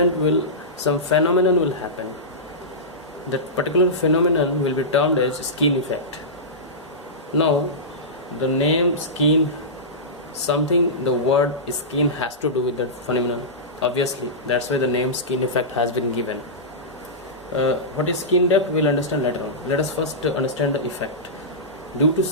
phenomenon will happen. That particular phenomenon will be termed as skin effect. Now the name skin, the word skin has to do with that phenomenon, obviously. That's why the name skin effect has been given. What is skin depth we'll understand later on. Let us first understand the effect. Due to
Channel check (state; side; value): normal; both; correlation -0.15